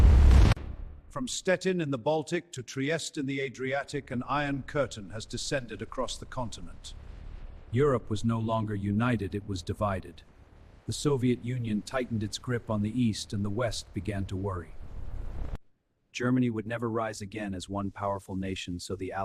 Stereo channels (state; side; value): identical; both; correlation 1.00